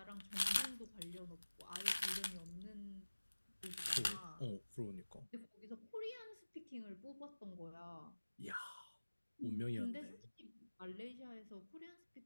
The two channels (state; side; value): inverted; both; correlation -1.00